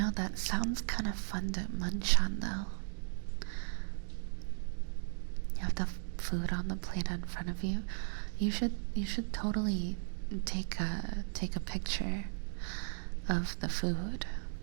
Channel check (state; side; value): silent; left; digital silence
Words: that sounds kind of fun to munch on, though. You have the food on the plate in front of you. You should totally take a picture of the food,